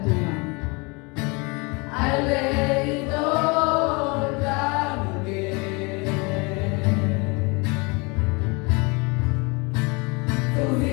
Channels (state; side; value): quieter; right; 28.8 dB